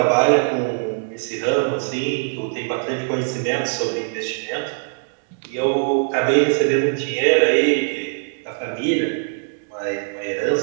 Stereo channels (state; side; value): silent; left; digital silence